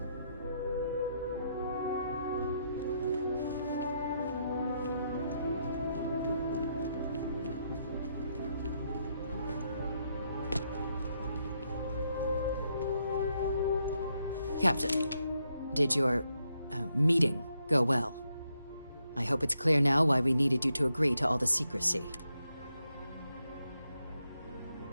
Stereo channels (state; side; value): inverted; both; correlation -0.79